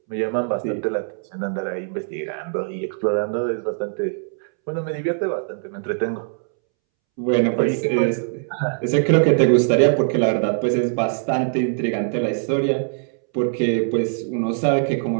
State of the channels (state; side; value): silent; left; 64 dB below the other